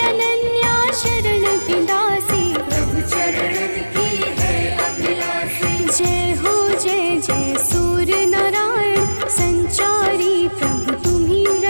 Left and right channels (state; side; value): inverted; both; correlation -1.00